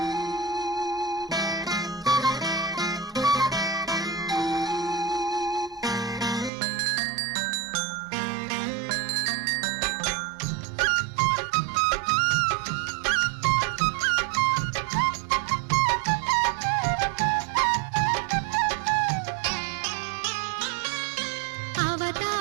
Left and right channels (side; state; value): left; drops out; at 6.5 s